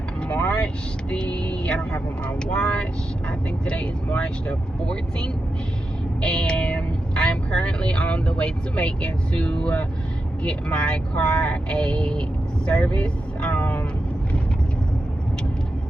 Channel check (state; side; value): normal; both; correlation 0.89